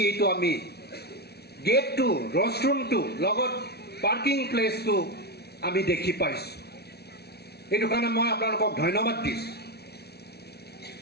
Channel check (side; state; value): right; late; 0.47 ms